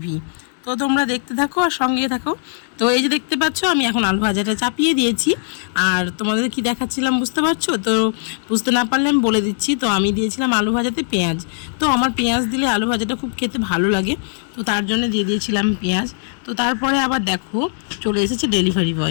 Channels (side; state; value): right; silent; 62 dB below the other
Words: তো তোমরা দেখতে থাকো আর সঙ্গে থাকো। তো এই যে দেখতে পাচ্ছ আমি এখন আলু ভাজাটা চাপিয়ে দিয়েছি। আর তোমাদের কি দেখাচ্ছিলাম বুঝতে পারছো? তো বুঝতে না পারলে আমি বলে দিচ্ছি। তো আমি দিয়েছিলাম আলু ভাজাতে পেঁয়াজ। তো আমার পেঁয়াজ দিলে আলু ভাজাটা খুব খেতে ভালো লাগে, তো তার জন্য দিয়ে দিয়েছিলাম পেঁয়াজ। তো তারপরে আবার দেখো চলে এসেছে ডেলিভারি